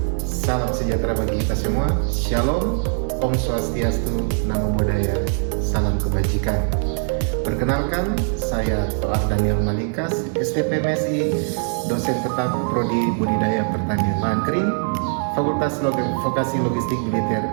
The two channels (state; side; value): silent; left; 56 dB below the other